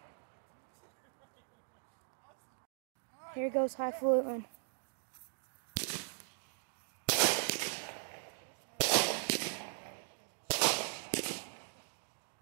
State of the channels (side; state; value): left; silent; digital silence